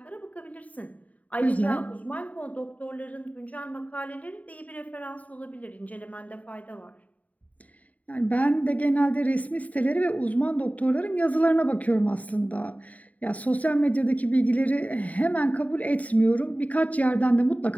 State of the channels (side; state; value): right; late; 0.070 ms